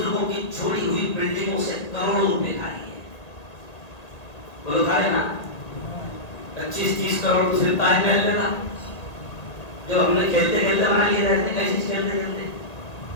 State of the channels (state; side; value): late; right; 1.9 ms